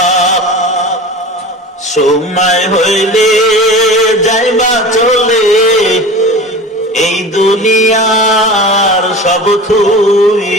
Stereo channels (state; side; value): normal; both; correlation 0.35